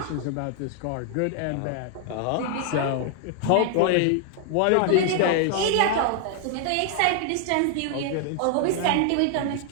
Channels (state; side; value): different; both; correlation 0.00